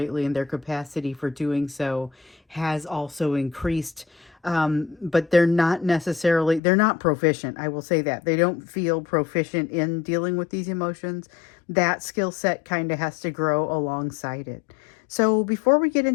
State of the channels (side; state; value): right; drops out; at 6.6 s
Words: and their capacity for doing so has also increased. But they're not proficient. I will say that. They don't feel proficient in dealing with these emotions. That skill set kind of has to grow alongside it. So before we get